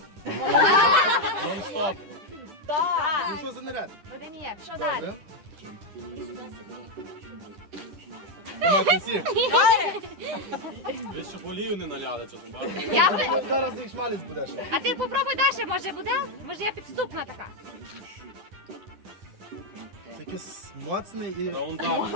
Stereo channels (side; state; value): left; late; 9.8 ms